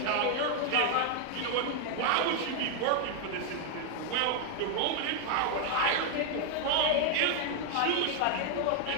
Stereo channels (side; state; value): both; different; correlation 0.00